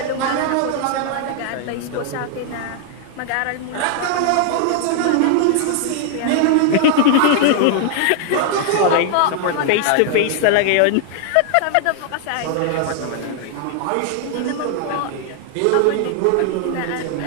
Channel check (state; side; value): different; both; correlation 0.00